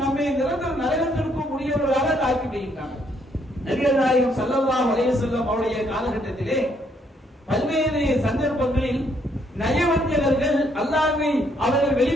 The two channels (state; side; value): normal; both; correlation 0.70